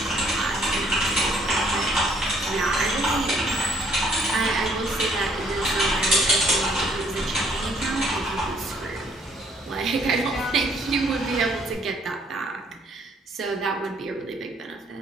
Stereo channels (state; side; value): normal; both; correlation 0.64